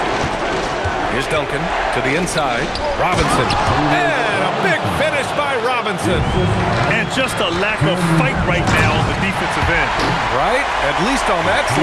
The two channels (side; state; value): both; identical; correlation 1.00